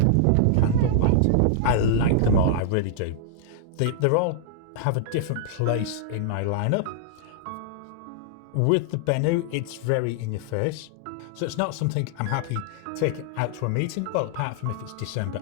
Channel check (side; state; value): both; different; correlation -0.01